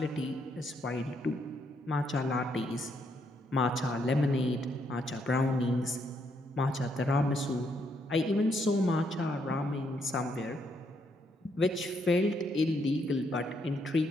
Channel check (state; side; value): normal; both; correlation 0.75